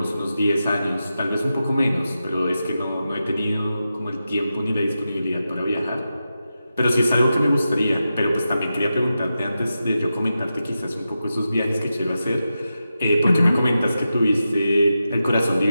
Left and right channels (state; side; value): inverted; both; correlation -0.90